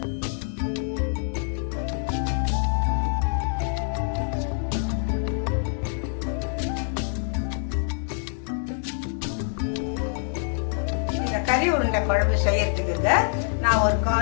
கறி உருண்டை குழம்பு செய்யறதுக்குங்க நான் ஒரு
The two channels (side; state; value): right; silent; 61 dB below the other